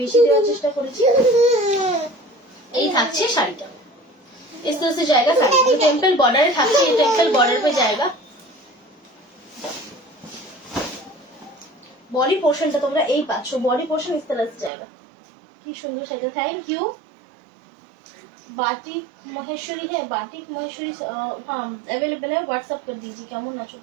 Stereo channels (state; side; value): drops out; left; at 14.7 s